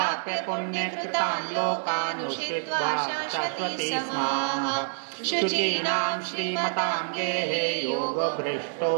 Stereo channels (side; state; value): left; silent; 60 dB below the other